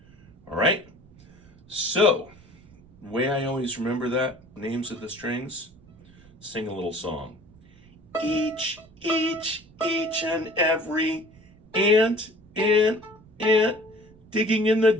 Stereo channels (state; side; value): noise; right; rumble, 25 dB below the sound